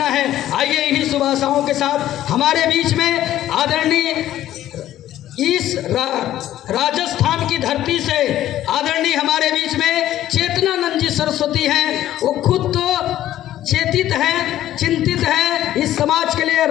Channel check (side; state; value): right; quieter; 13.0 dB